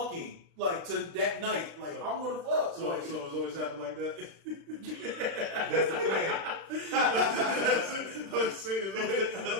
like to that night. Like I'm gonna fuck. So it's always happened like that. That's the plan. I'm saying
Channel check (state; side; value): late; left; 36 ms